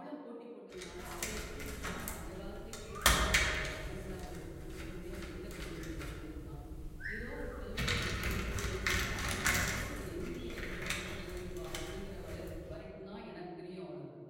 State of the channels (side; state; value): both; identical; correlation 1.00